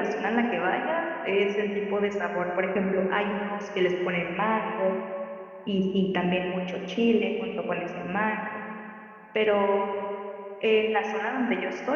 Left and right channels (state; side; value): identical; both; correlation 1.00